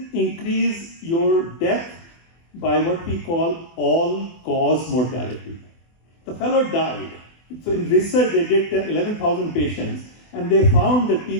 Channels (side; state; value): right; late; 24 ms